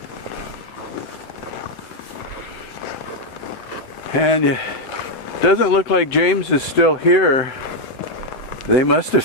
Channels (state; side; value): late; right; 7.8 ms